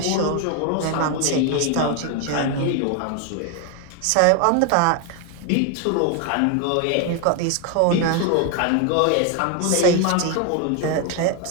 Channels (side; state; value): both; different; correlation 0.01